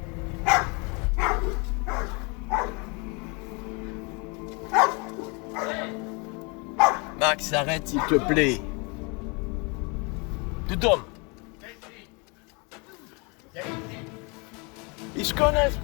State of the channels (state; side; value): quieter; right; 30.9 dB